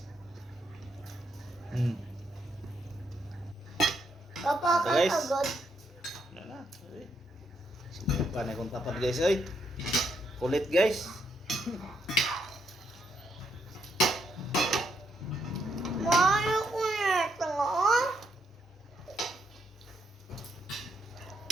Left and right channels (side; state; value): both; normal; correlation 0.76